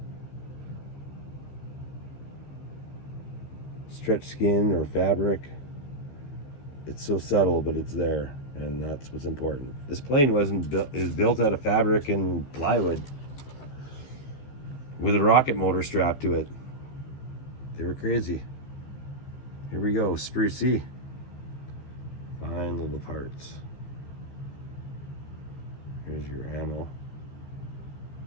Stretch skin or fabric. It's so subtle, but it's there, and that's what's important. This plane wasn't built; it was built out of fabric and plywood with a rocket motor strapped to it. They were crazy. Here we go, sprue C. Fine little parts. Here's your ammo.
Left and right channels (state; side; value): late; right; 13 ms